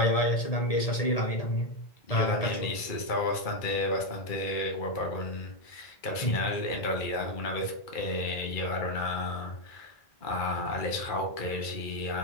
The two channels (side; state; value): right; late; 2.3 ms